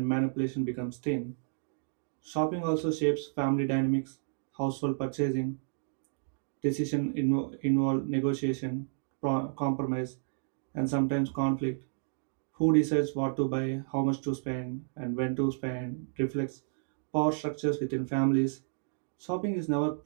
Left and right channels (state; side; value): silent; left; digital silence